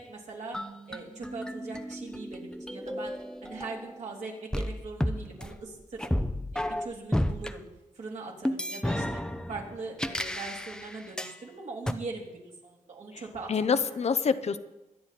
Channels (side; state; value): both; normal; correlation 0.74